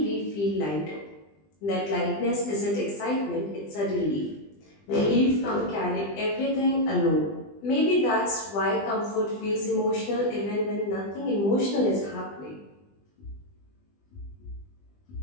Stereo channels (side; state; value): right; late; 20 ms